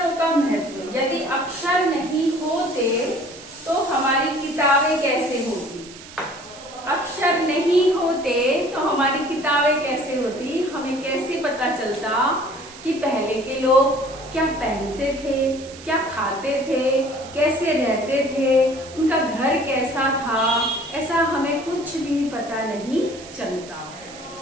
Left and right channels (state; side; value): noise; right; hiss, 17 dB below the sound